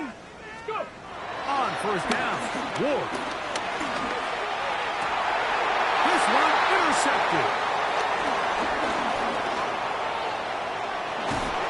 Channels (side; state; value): both; identical; correlation 1.00